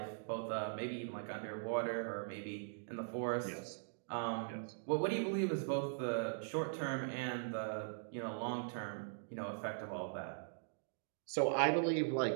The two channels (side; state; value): left; silent; digital silence